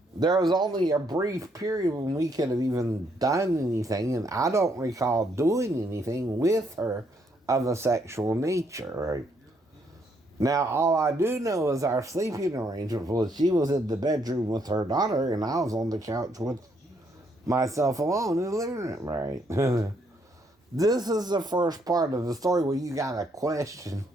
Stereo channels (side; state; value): both; normal; correlation 0.72